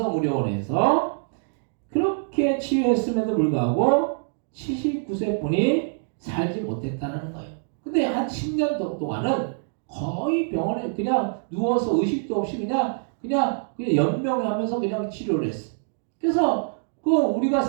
그렇게 치유했음에도 불구하고 79세 분이 살지 못했다는 거예요. 근데 한 10년 동안은 거의 병원에 그냥 누워서 의식도 없이 그냥 연명하면서 그냥 치료를 했어. 그래서 우리가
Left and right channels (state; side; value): silent; left; digital silence